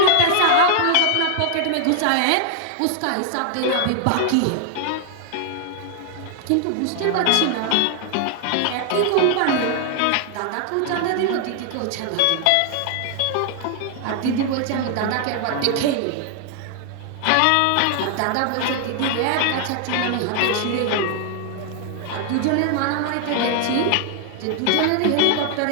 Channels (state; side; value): different; both; correlation 0.00